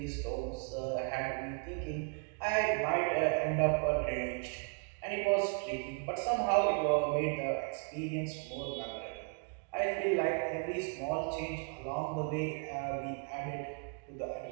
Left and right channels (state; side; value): quieter; left; 38.7 dB